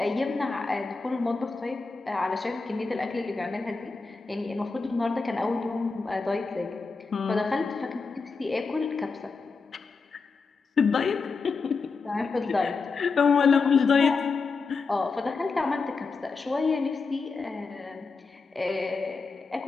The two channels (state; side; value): quieter; right; 4.4 dB